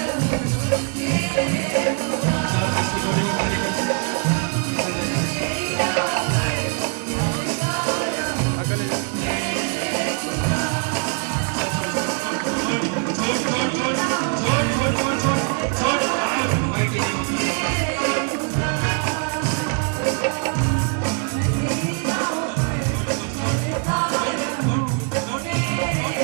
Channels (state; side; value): quieter; left; 37.4 dB